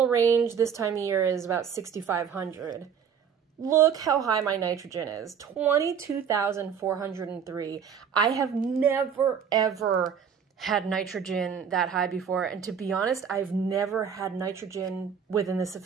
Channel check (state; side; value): quieter; left; 7.4 dB